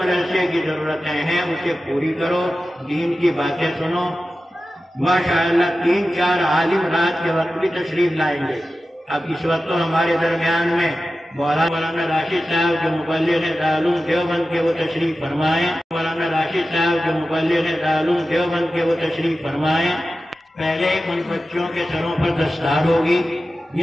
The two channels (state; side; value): normal; both; correlation 0.94